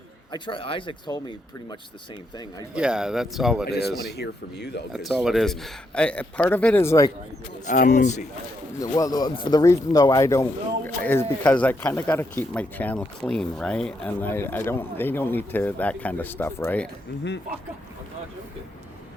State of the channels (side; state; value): both; normal; correlation 0.79